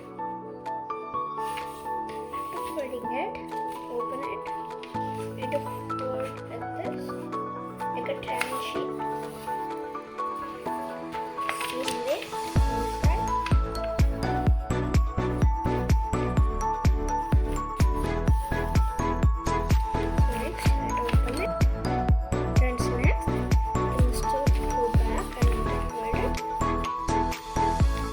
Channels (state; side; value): identical; both; correlation 1.00